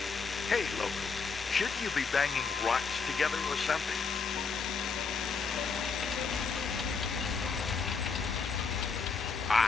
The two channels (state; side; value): quieter; right; 5.0 dB